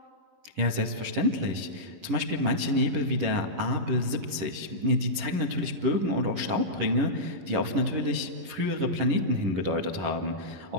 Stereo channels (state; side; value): late; left; 11 ms